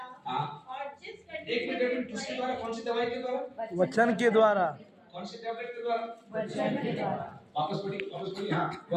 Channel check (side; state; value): both; identical; correlation 1.00